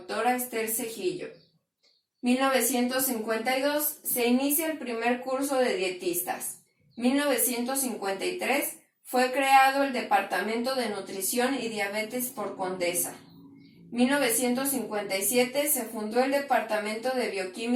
Esther Cejillo. 1952. Se inicia el primer curso de dietistas. 1953. Fue creado el Departamento de Nutrición y Diabetes por Condesa. 1957 se fundó el Departamento de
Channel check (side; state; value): both; identical; correlation 1.00